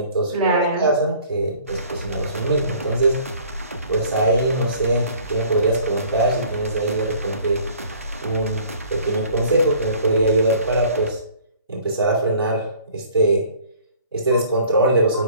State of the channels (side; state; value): both; inverted; correlation -0.54